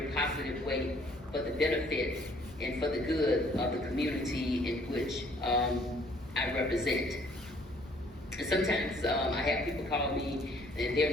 positive way for the benefit and for the good of the community in which I represent. And sometimes I have people call me and they're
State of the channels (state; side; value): normal; both; correlation 0.60